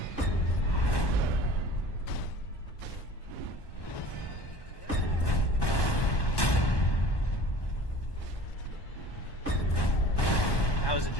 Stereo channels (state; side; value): late; right; 1.1 ms